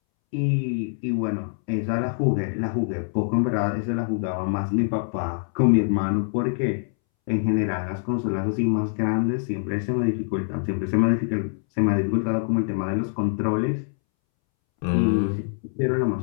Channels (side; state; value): right; silent; 62 dB below the other